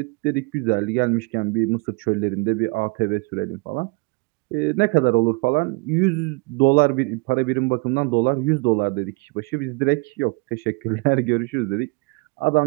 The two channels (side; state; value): left; quieter; 28.4 dB